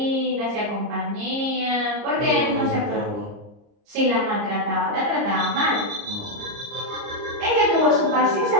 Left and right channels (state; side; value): late; left; 30 ms